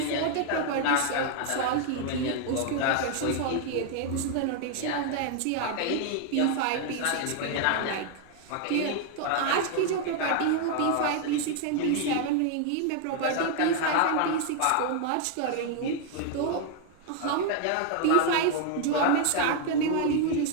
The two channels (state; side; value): different; both; correlation 0.00